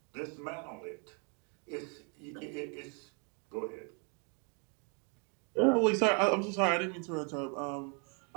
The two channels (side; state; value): left; quieter; 37.1 dB